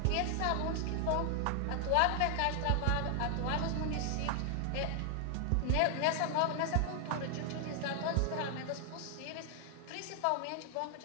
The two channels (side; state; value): both; different; correlation 0.00